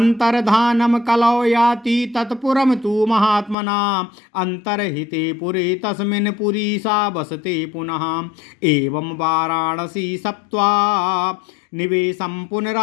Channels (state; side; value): drops out; right; at 3.6 s